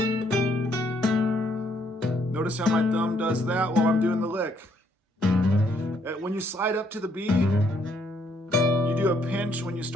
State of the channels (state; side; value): normal; both; correlation 0.70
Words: notice how my thumb does that while I'm doing the lick. When you slide up to the B, you do a pinch. When you